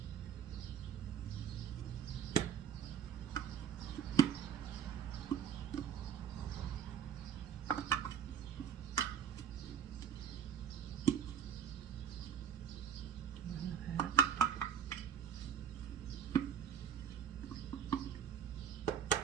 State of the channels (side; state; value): left; quieter; 8.2 dB